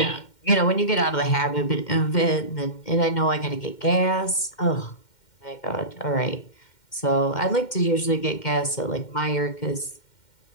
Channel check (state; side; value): late; right; 2.1 ms